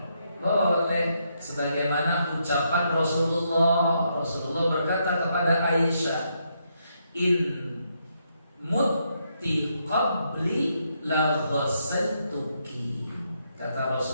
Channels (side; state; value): both; inverted; correlation -0.78